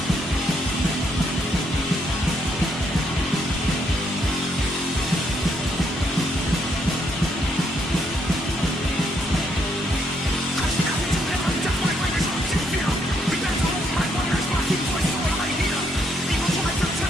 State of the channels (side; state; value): both; normal; correlation 0.73